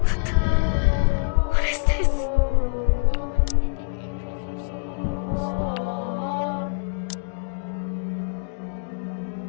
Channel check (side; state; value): right; silent; digital silence